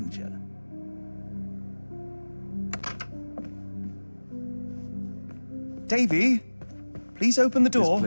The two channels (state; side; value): inverted; both; correlation -1.00